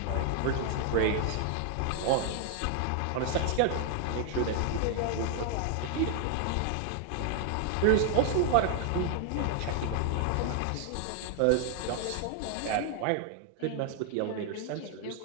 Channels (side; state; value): both; different; correlation 0.00